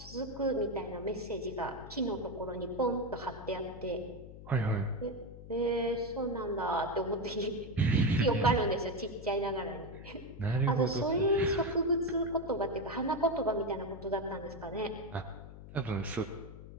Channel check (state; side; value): noise; left; hum, 14 dB below the sound